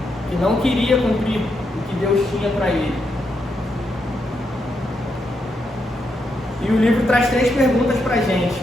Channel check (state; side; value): normal; both; correlation 0.81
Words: que não queria cumprir o que Deus tinha para ele. E o livro traz 3 perguntas para a gente.